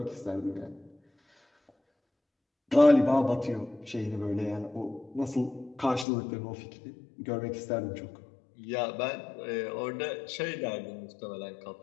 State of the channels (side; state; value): right; drops out; at 6.1 s